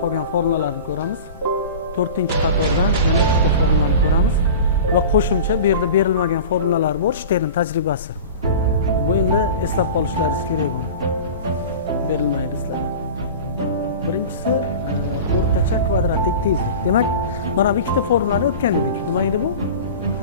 qolgan formulalarni ko'ramiz. To'rtinchi qatordan yana ikkita formulani ko'ramiz va qo'shimcha bu yerda berilmagan formulalar bor, Stern tajribasi. Bu endi eslab qolishlaringiz kerak buni. Berilmaydi sizlarga. Birinchisi o'rtacha kvadratik tezlik. Demak, mana bu ikkita formulani o'tgan edik. Nima edi bu?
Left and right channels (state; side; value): inverted; both; correlation -0.35